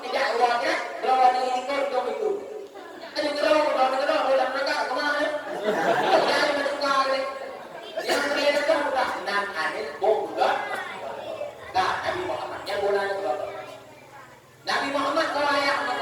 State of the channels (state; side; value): identical; both; correlation 1.00